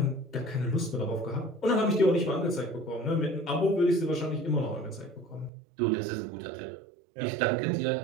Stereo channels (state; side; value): drops out; left; at 5.5 s